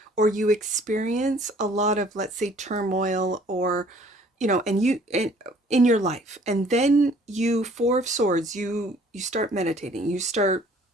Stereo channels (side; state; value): both; normal; correlation 0.56